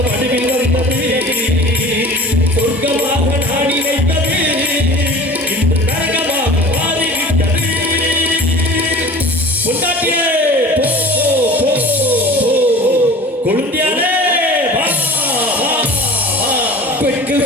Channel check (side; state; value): both; normal; correlation 0.41